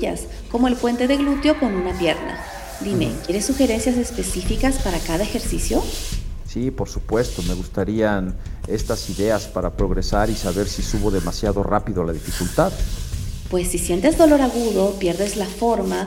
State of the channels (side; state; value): both; identical; correlation 1.00